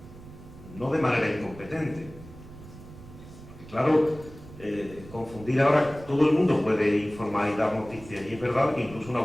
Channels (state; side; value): noise; right; rumble, 17 dB below the sound